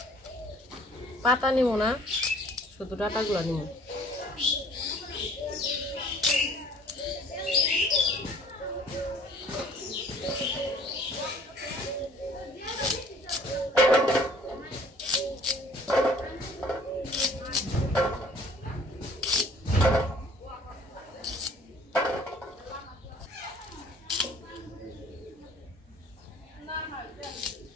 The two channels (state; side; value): normal; both; correlation 0.54